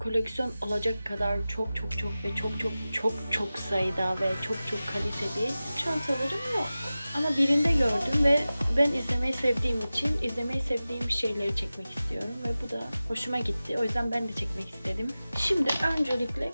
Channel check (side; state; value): both; inverted; correlation -0.96